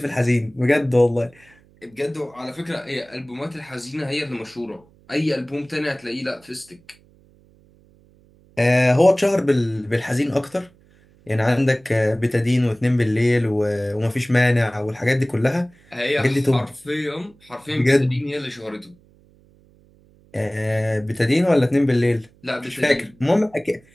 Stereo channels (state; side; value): noise; right; hum, 30 dB below the sound